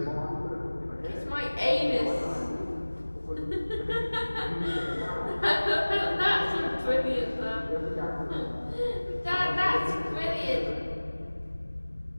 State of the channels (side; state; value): both; inverted; correlation -1.00